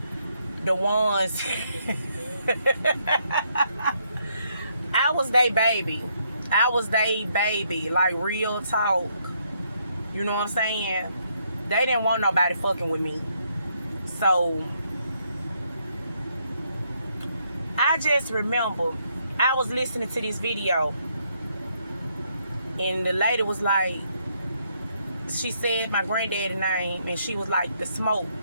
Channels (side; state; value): both; inverted; correlation -0.73